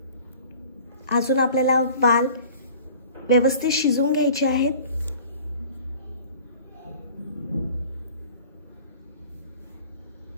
अजून आपल्याला वाल व्यवस्थित शिजवून घ्यायचे आहेत.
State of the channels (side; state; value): both; inverted; correlation -0.46